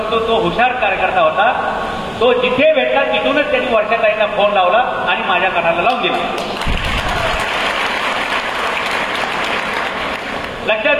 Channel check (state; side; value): identical; both; correlation 1.00